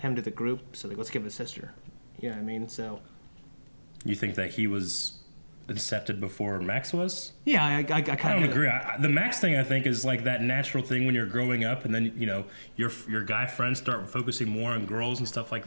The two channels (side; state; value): both; inverted; correlation -1.00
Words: to the group. So like, let's give it a sister. You know what I mean? So you think that he was incepted before Max was. Yeah, I I kind don't of agree. The Max thing, I think, is like that natural thing when you're growing up, and then your guy friends start focusing more on girls and stuff like